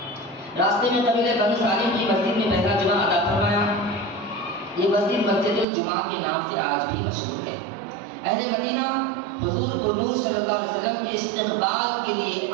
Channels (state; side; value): drops out; left; at 5.7 s